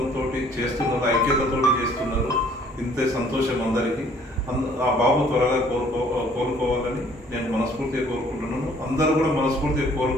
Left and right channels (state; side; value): normal; both; correlation 0.58